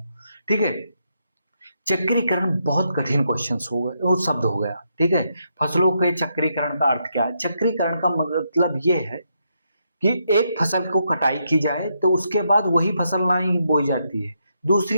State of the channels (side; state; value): both; inverted; correlation -0.79